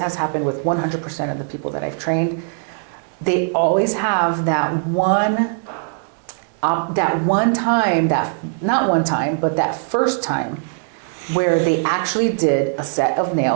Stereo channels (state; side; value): silent; left; digital silence